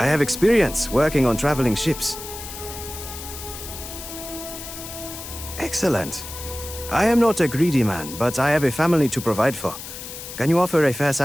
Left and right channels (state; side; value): noise; left; hiss, 11 dB below the sound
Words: have experience working on traveling ships. Excellent. I am not a greedy man, but I have a family to provide for. Can you offer a fair